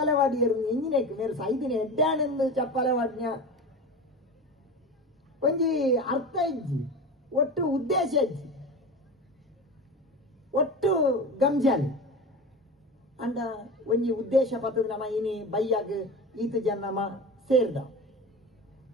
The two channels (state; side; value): normal; both; correlation 0.29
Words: ವಾಡಿಯರು ಎಂಜಿನೇಕ್ ಮೇರೆ ಸೈದಿನ ಎಡ್ಡಾಣಂದು ಚಪ್ಪಲೆ ವಾಡ್ನ್ಯ ಒಂಜಿ ಅರ್ಥ ಇಜ್ಜಿ ಒಟ್ಟು ಉದ್ದೇಶ ಇಜ್ಜಿ ಒಟ್ಟು ಗಂಜಾಲಿ ಅಂಡ ಒಂಜಿ ಉದ್ದೇಶ ಪತ್ತದ ನಮ್ಮ ಇನಿ ಬೈಯಾಗ ಈತ ಜನ ನಮ್ಮ ಸೇರ್ದ